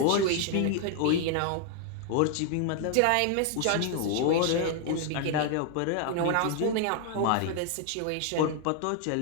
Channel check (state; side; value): different; both; correlation 0.00